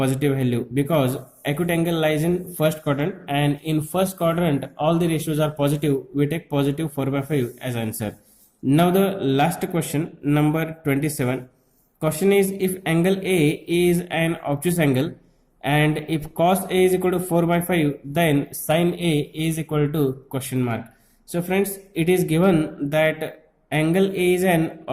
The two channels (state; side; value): identical; both; correlation 1.00